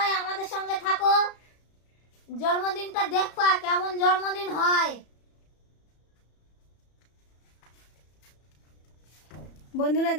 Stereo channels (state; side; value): late; right; 34 ms